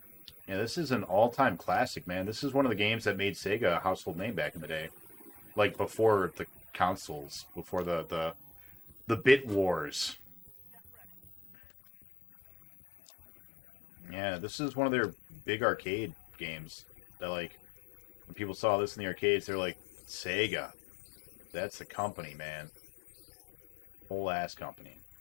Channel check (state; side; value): drops out; right; at 11.6 s